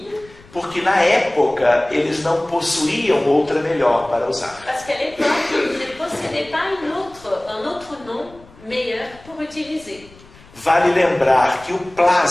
porque na época eles não possuíam outra melhor para usar. parce qu'à l'époque, ils ne possédaient pas un autre nom meilleur pour utiliser. Vale lembrar que o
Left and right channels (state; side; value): noise; left; rumble, 24 dB below the sound